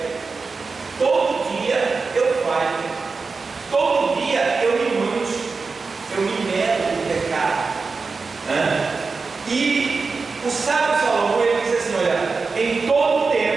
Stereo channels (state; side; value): quieter; left; 4.4 dB